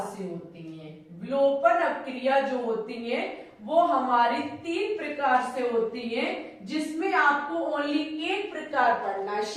से होती है। विलोपन अभिक्रिया जो होती है वो हमारी 3 प्रकार से होती है, जिसमें आपको ओनली एक प्रकार पढ़ना है,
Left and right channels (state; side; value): identical; both; correlation 1.00